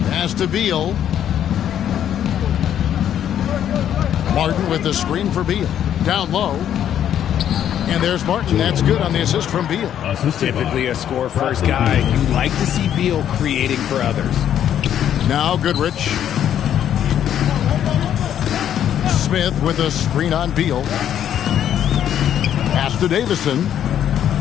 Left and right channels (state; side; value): quieter; right; 10.1 dB